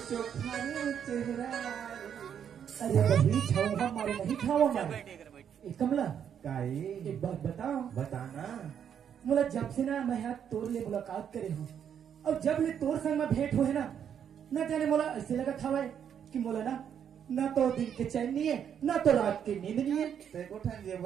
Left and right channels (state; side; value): quieter; left; 8.5 dB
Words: चोखा चेहरा। अरे वही झोंका मारे नहीं खावा मारे ए कमला काई एक बात बताओ। बताना। मोला जब से ना मैं यहाँ तोर ले मुलाकात करे हूँ और जब ले तोर संग में भेंट हुए ना न जाने मोला ऐसे लगा था भाई कि मोला ना तो दिन के चैन नहीं है ना तो रात की नींद नहीं है।